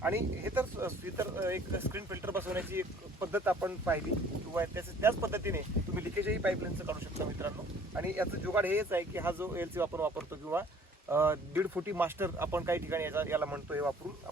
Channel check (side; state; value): both; normal; correlation 0.54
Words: आणि हे तर एक स्क्रीन फिल्टर बसवण्याची एक पद्धत आपण पाहिली, किंवा त्याच पद्धतीने तुम्ही लिकेजही पाईपलाईनचं काढू शकता मित्रांनो. आणि याचं जुगाड हेच आहे की हा जो LC आपण वापरतो किंवा 1.5 फुटी मास्टर आपण काही ठिकाणी याला म्हणतो, हे वापरून